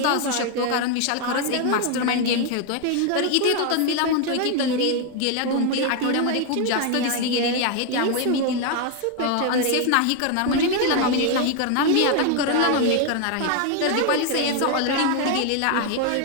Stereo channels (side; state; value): both; different; correlation 0.01